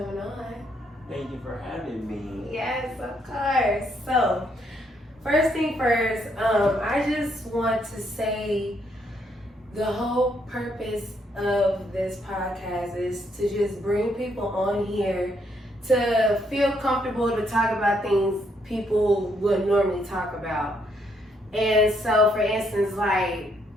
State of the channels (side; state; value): both; normal; correlation 0.73